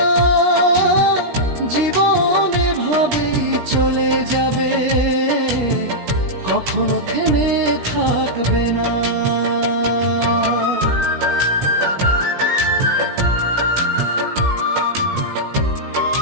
জীবন এভাবেই চলে যাবে, কখনো থেমে থাকবে না।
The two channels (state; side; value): late; left; 17 ms